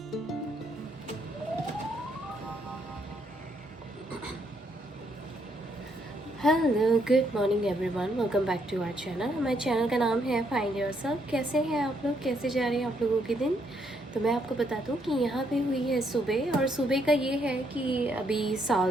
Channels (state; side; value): normal; both; correlation 0.73